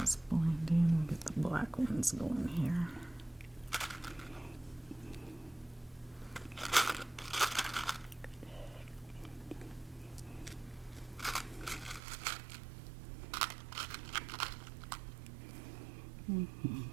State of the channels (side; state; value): left; drops out; at 12.0 s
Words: blend in. We'll get the black ones going here.